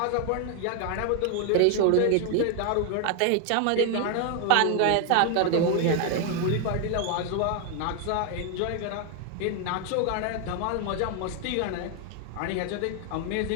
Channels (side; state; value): both; different; correlation 0.00